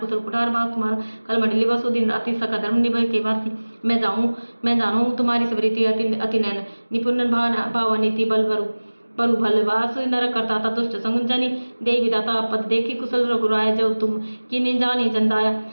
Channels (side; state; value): both; inverted; correlation -1.00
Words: कुठार बास तुम्हारा कल मंडली बसो दिन राति सका धर्म निभय के भारती मैं जानू तुम्हारी सबरीति अति नैन निपुण भाव नीति बलु भलवास नर करता था दुष्ट संजनी देवी विदाता पद देखी कुशल रघुराय जब तुम किन्हीं जानी जंदाया